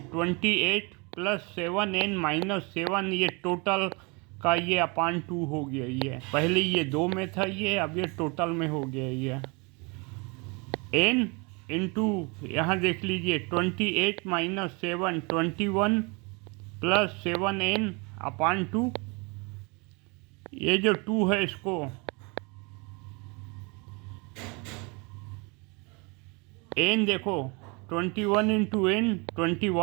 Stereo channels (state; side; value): quieter; left; 29.9 dB